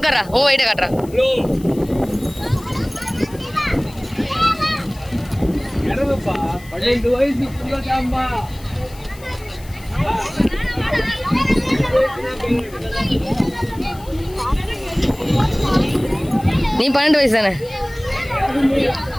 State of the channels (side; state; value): left; noise; hiss, 22 dB below the sound